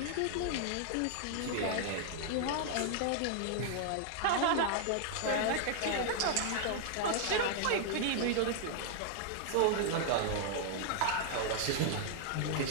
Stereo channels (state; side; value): different; both; correlation -0.01